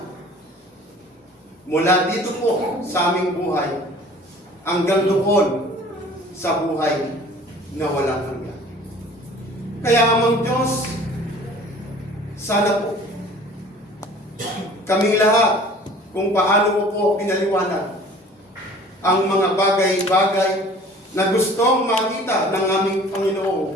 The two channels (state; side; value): normal; both; correlation 0.48